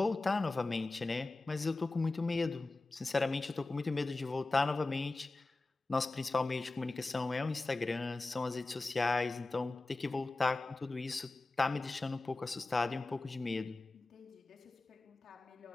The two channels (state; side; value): quieter; right; 3.2 dB